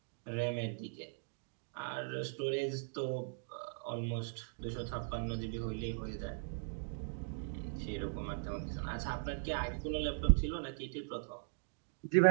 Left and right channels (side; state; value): left; silent; digital silence